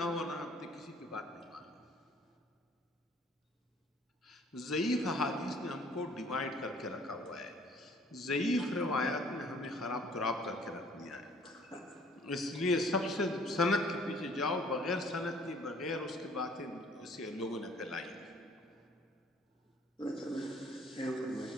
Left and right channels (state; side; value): normal; both; correlation 0.56